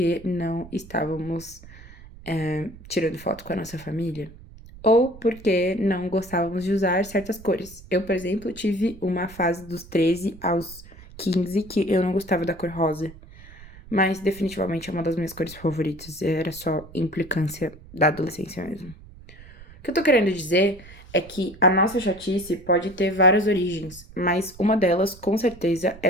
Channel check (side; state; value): right; noise; rumble, 19 dB below the sound